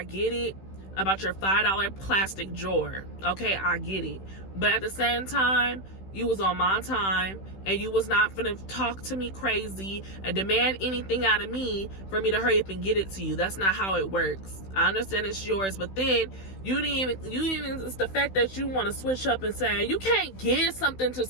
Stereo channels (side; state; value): right; late; 16 ms